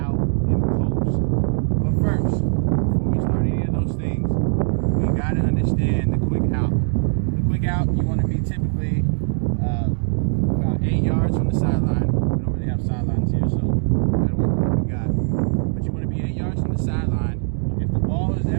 and post. But first, before we start any of those things, we got to understand the quick out. The quick out, you want to be typically about 8 yards from the sideline. We don't really have sidelines here, so we got to work with what we got. But you want to be 8 yards from the sideline. If the ball is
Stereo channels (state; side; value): silent; left; digital silence